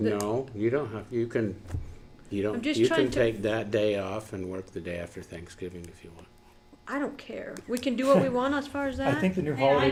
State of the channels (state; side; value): identical; both; correlation 1.00